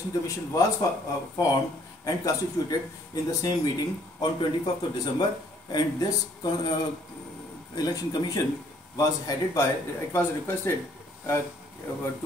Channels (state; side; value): normal; both; correlation 0.62